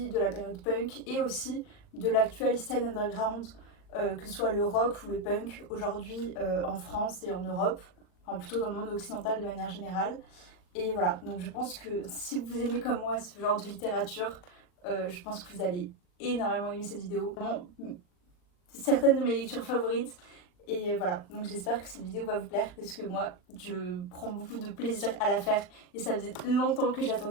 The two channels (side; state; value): right; late; 39 ms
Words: de la période punk et aussi de l'actuelle scène underground, que ce soit le rock ou le punk aujourd'hui en France et en Europe, enfin plutôt dans le monde occidental de manière générale. Et voilà, donc je pense que si vous aimez comme moi ce genre de littérature, je pense que vous allez énormément aimer cette vidéo. Vraiment, certaines de mes lectures favorites. Et voilà, donc j'espère que cette vidéo va vous plaire parce que moi, je prends beaucoup de plaisir à la faire et ça faisait longtemps que